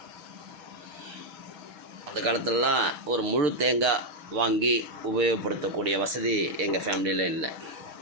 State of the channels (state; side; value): late; left; 6.3 ms